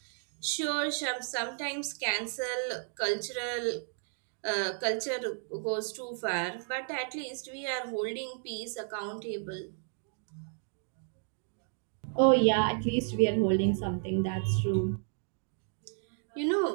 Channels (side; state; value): left; silent; 56 dB below the other